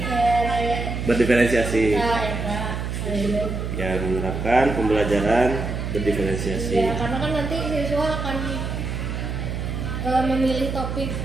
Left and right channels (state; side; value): noise; right; hum, 4 dB below the sound